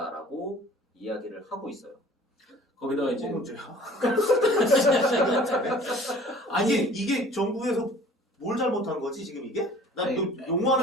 이야기를 하고 있어요. 거기다가 이제 문제야. 아니 이게 정부에서 뭘 잘못한 거지 지금 이게? 나 아니,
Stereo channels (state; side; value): normal; both; correlation 0.49